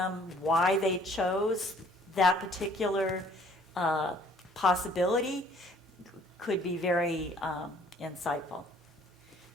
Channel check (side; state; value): both; normal; correlation 0.58